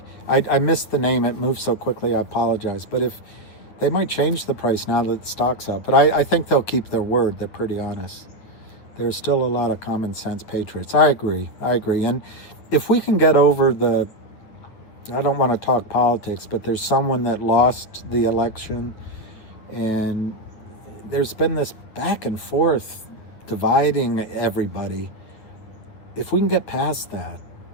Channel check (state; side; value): late; right; 9.3 ms